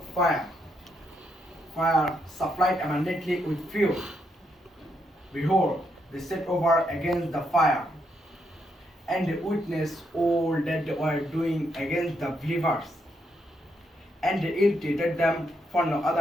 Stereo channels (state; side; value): normal; both; correlation 0.78